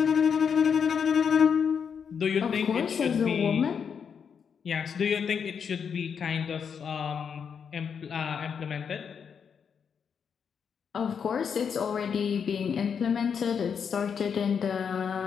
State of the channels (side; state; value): right; quieter; 6.9 dB